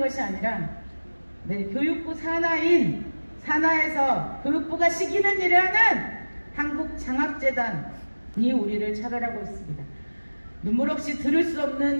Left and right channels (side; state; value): both; inverted; correlation -1.00